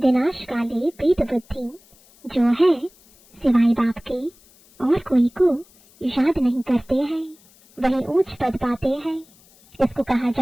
काले प्रीत बुद्धि जो है सिवाय बाप के और कोई को याद नहीं करते हैं, वही ऊंच पद पाते हैं। इसको कहा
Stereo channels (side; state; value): left; noise; hiss, 28 dB below the sound